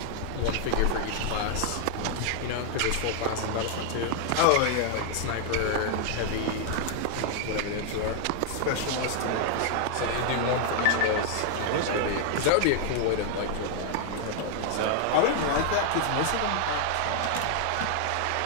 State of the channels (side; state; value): both; different; correlation 0.00